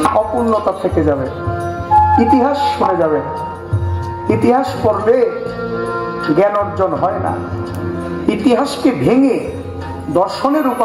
অপূর্ণতা থেকে যাবে, ইতিহাস শুনে যাবে। ইতিহাস পড়লে জ্ঞান অর্জন হয় না। ইতিহাসকে ভেঙে দর্শনে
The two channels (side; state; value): both; identical; correlation 1.00